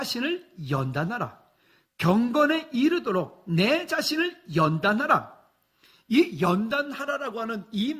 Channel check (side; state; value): both; identical; correlation 1.00